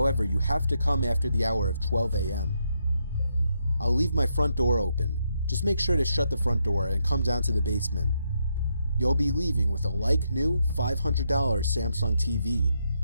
you have to come after the hour of 12 a.m. I'll leave my front door open. Just make sure to shut the front door and come down to the basement. You'll be leaving with a like-new $500 Samsung TV.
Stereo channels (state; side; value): inverted; both; correlation -0.80